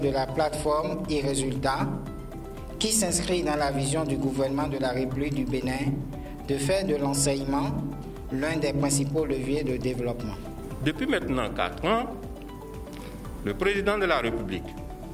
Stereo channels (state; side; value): identical; both; correlation 1.00